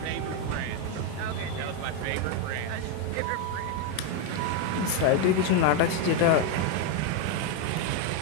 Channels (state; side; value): different; both; correlation 0.02